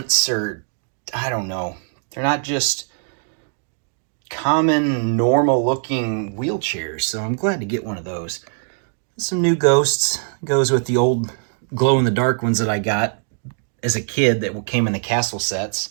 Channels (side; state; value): left; silent; 65 dB below the other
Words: or I don't know. They're not just common normal looking wheelchairs, so I'm glad to get one of those. Some new ghosts. Goes with the old glow in the dark ones that I got as a kid that came in the castle sets.